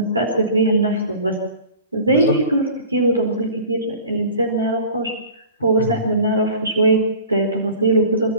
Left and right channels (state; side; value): inverted; both; correlation -0.42